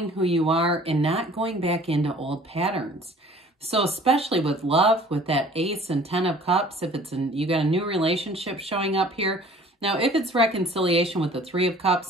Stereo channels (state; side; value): normal; both; correlation 0.50